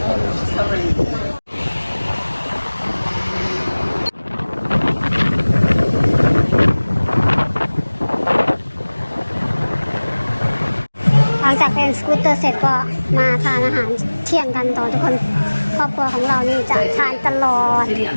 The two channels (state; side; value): inverted; both; correlation -1.00